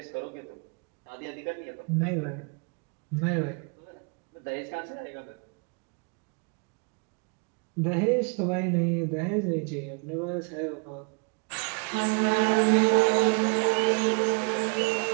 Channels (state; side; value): quieter; left; 36.9 dB